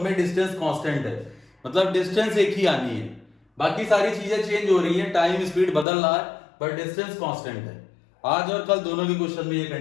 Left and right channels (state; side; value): drops out; right; at 5.9 s